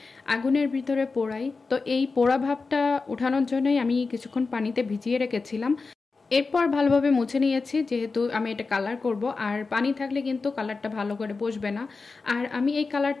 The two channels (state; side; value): quieter; right; 4.2 dB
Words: আগুনের ভিতরে পোড়াই, তো এই পোড়া ভাবটা ওঠানোর জন্যই আমি কিছুক্ষণ পানিতে ভিজিয়ে রেখেছিলাম। এরপর ভালোভাবে মুছে নিয়েছি, যেহেতু আমি এটা কালার করব, আর পানি থাকলে কিন্তু কালারটা ভালো করে বসবে না। আর আমি এই